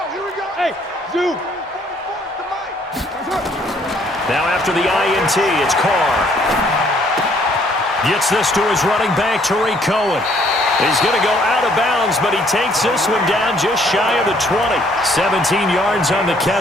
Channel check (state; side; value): normal; both; correlation 0.64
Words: here we go. Hey, Zoo. 44 to Mike. Now after the INT, it's Carr. Gets this to his running back, Tariq Cohen. He's going to go out of bounds, but he takes this one down just shy of the 20. 17 yards on the